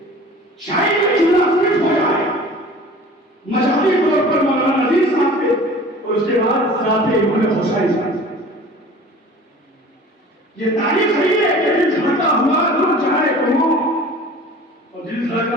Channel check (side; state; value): both; normal; correlation 0.43